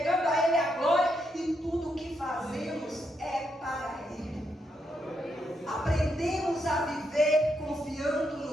a Ele a glória. E tudo o que fazemos é para Ele. Aprendemos a viver confiando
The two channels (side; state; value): both; normal; correlation 0.80